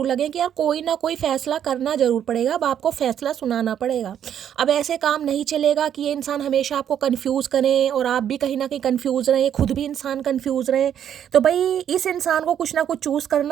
लगे कि यार कोई ना कोई फैसला करना जरूर पड़ेगा। अब आपको फैसला सुनाना पड़ेगा। अब ऐसे काम नहीं चलेगा कि ये इंसान हमेशा आपको कंफ्यूज करें और आप भी कहीं ना कहीं कंफ्यूज रहें, खुद भी इंसान कंफ्यूज रहे। तो भाई इस इंसान को कुछ ना कुछ चूज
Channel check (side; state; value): left; quieter; 9.5 dB